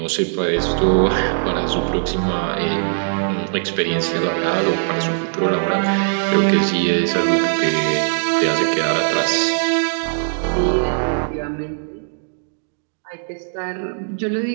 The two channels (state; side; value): silent; left; digital silence